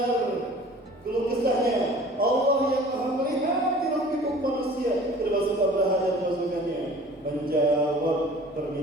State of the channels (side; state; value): both; normal; correlation 0.46